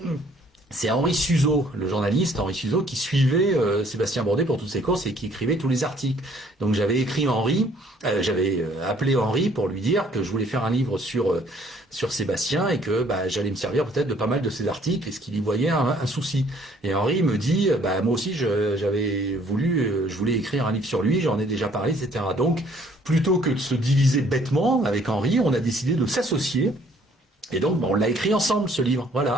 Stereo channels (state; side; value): normal; both; correlation 0.61